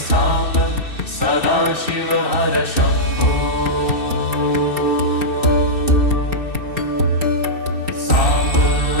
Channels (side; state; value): right; late; 2.6 ms